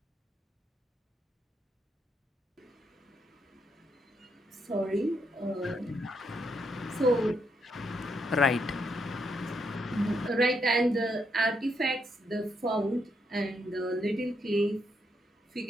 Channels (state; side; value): normal; both; correlation 0.78